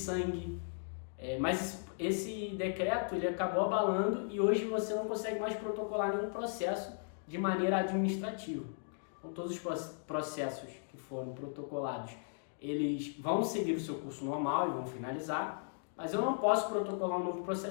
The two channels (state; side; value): silent; right; digital silence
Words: Mas esse decreto ele acabou abalando e hoje você não consegue mais protocolar nenhum processo de maneira administrativa. Então, todos os processos que foram protocolados, eles vão seguir o seu curso normal e vão finalizar, mas eu não posso protocolar um novo